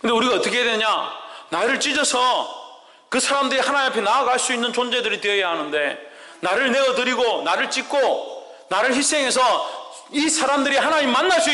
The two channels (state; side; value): identical; both; correlation 1.00